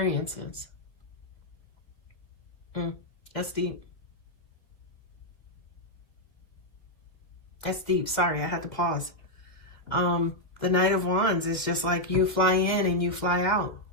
That's deep. That's deep. Sorry, I had to pause. The Knight of Wands is just like you fly in and you fly out.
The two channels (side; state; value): right; late; 2.3 ms